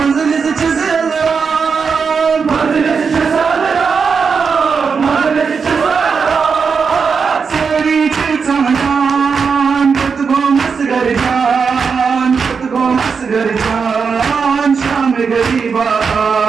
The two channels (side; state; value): left; quieter; 5.6 dB